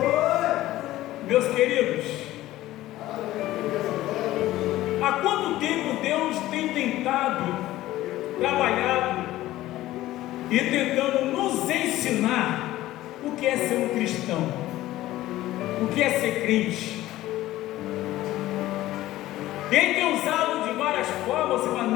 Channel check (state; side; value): quieter; right; 15.6 dB